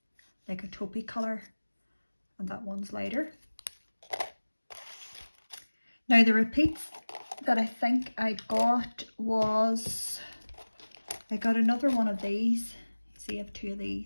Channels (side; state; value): both; inverted; correlation -1.00